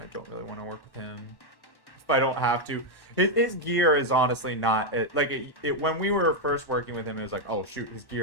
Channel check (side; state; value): right; late; 1.1 ms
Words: don't really want to work with him. If I don't have to. His gear is honestly not, when we were first working with him, it was like, oh shoot, his